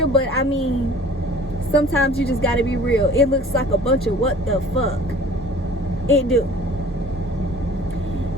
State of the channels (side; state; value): both; normal; correlation 0.48